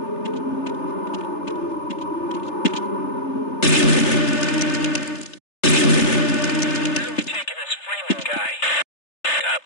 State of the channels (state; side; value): late; right; 3.3 ms